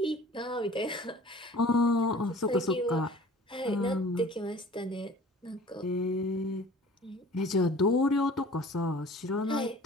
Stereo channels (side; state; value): both; normal; correlation 0.45